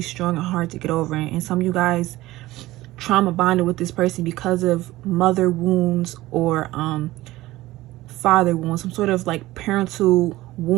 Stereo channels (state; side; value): quieter; left; 17.5 dB